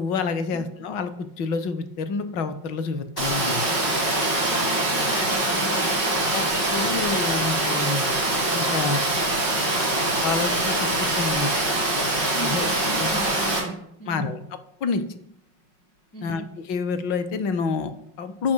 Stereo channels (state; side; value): late; right; 5.5 ms